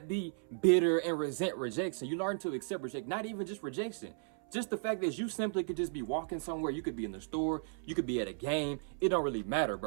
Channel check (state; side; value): silent; left; 54 dB below the other